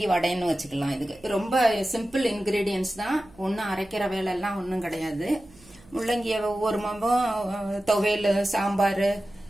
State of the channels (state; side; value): noise; right; hum, 26 dB below the sound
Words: வடைன்னு வச்சுக்கலாம். இதுக்கு ரொம்ப சிம்பிள் இன்கிரீடியன்ஸ் தான். ஒன்றும் அரைக்கிற வேலை எல்லாம் ஒன்றும் கிடையாது. முள்ளங்கிய ஒவ்வொரு மாதம் துவையல், சாம்பார்